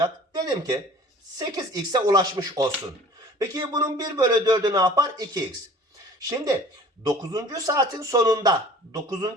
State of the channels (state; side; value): normal; both; correlation 0.47